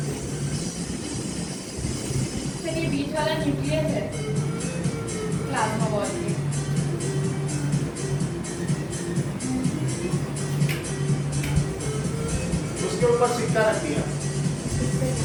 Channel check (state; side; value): identical; both; correlation 1.00